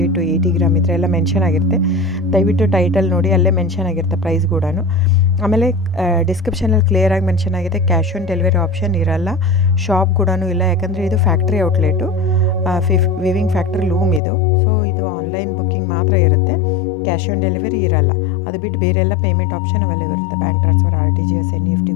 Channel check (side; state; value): right; drops out; at 14.2 s